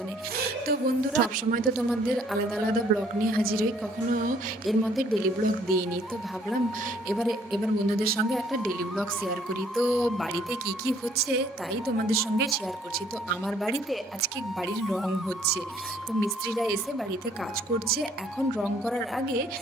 তো বন্ধুরা, সবসময় তো তোমাদের আলাদা আলাদা ব্লগ নিয়ে হাজির হই, কখনো এর মধ্যে ডেলি ব্লগ দিইনি। তো ভাবলাম এবার বন্ধুদের সঙ্গে একটা ডেলি ব্লগ শেয়ার করি। তো বাড়িতে কি কি হচ্ছে তাই তোমাদের সঙ্গে শেয়ার করছি। তো আমার বাড়িতে আজকে বাড়ির রং হচ্ছে। তো মিস্ত্রিরা এসে বাড়িতে কাজ করছে। এখন রং করার আগে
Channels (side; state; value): both; normal; correlation 0.62